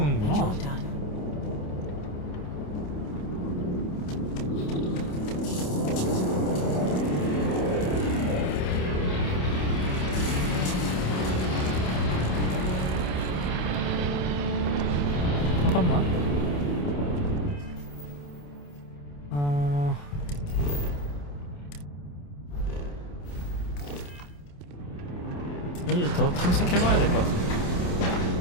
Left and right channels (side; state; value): right; late; 28 ms